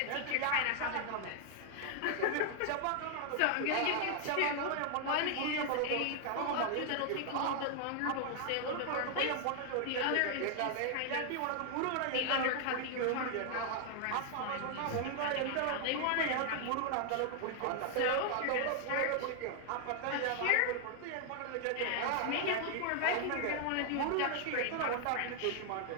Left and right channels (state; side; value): different; both; correlation 0.00